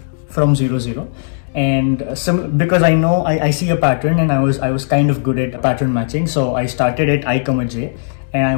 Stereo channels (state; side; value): silent; right; digital silence